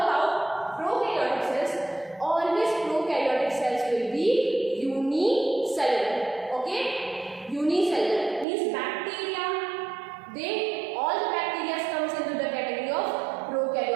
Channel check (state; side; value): drops out; left; at 8.5 s